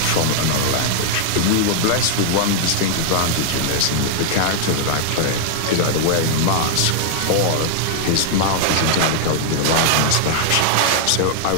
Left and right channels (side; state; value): both; different; correlation 0.00